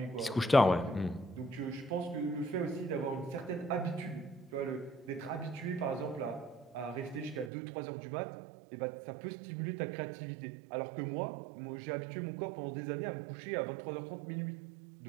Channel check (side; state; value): left; drops out; at 7.5 s